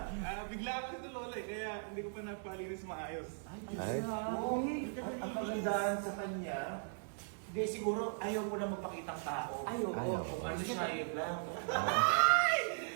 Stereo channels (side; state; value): left; silent; 52 dB below the other